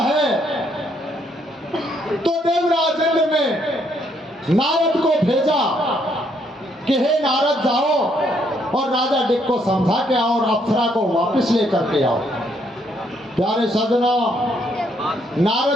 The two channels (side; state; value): both; normal; correlation 0.71